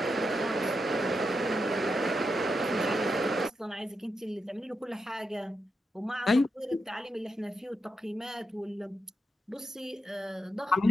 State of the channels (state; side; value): normal; both; correlation 0.85